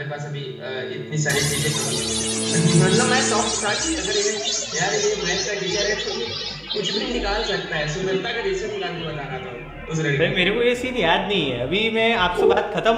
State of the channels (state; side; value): identical; both; correlation 1.00